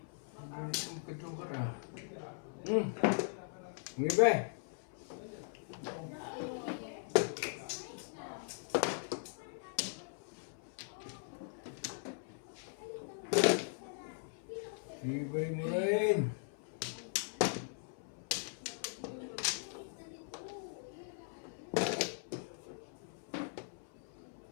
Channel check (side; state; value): right; silent; 51 dB below the other